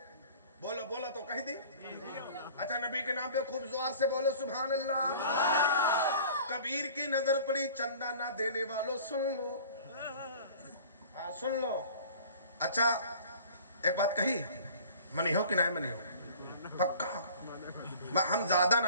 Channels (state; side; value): inverted; both; correlation -0.46